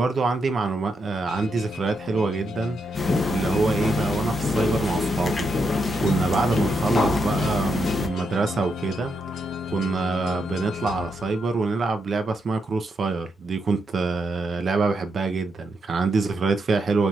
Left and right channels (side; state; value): both; normal; correlation 0.81